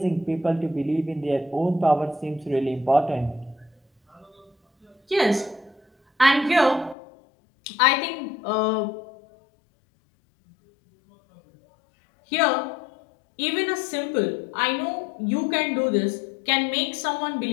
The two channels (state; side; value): drops out; right; at 7.0 s